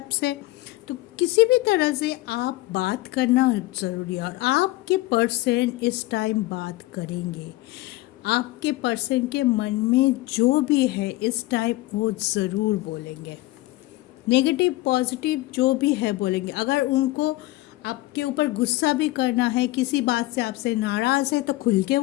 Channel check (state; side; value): quieter; right; 18.9 dB